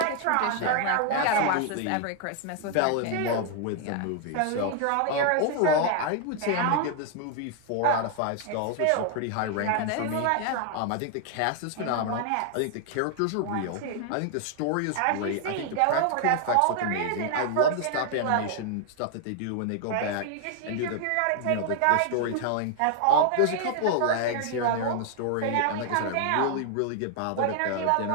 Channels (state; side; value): different; both; correlation 0.00